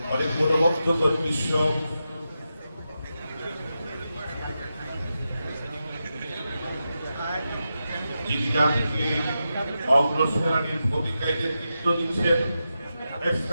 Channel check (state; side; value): inverted; both; correlation -0.89